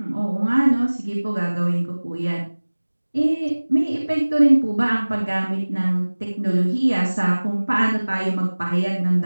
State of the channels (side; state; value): both; inverted; correlation -1.00